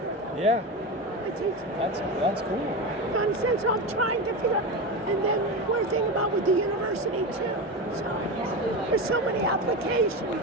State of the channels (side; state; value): both; normal; correlation 0.20